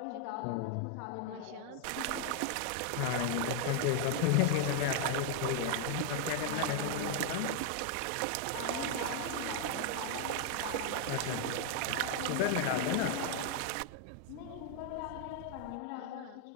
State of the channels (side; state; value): both; different; correlation 0.00